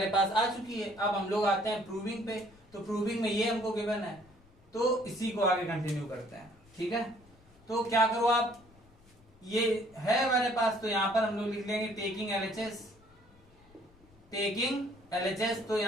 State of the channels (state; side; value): noise; left; rumble, 28 dB below the sound